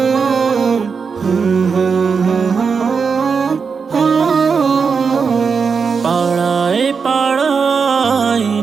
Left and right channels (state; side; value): quieter; left; 5.6 dB